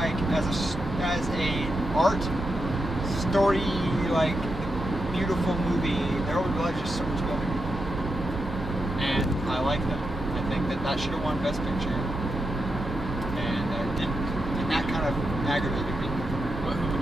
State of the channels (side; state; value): both; normal; correlation 0.85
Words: as a art story, like beautiful movie, There Will Be Blood is just so much better. And I like that. I think that should have won Best Picture, and it didn't. And that kind of aggravated me.